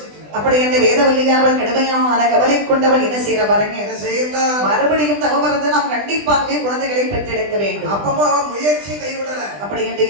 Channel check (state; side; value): late; left; 20 ms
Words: அப்படி அந்த வேதவல்லியானவள் கடுமையான கவலை கொண்டவள் என்ன செய்யற பாருங்க. என்ன செய்யறா? மறுபடியும் தவம் இருந்து நாம் கண்டிப்பாகவே குழந்தைகளை பெற்றெடுக்க வேண்டும். அப்பமா முயற்சி கைவிடல. அப்படி என்று